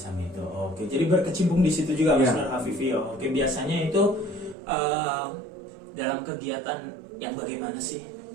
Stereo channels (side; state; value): left; drops out; at 4.5 s